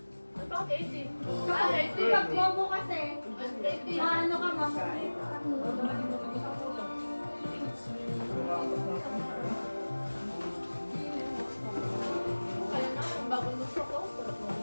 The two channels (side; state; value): both; inverted; correlation -1.00